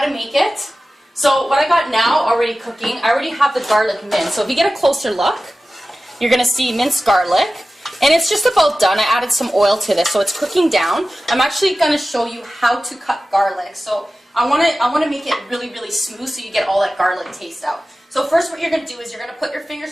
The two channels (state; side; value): normal; both; correlation 0.95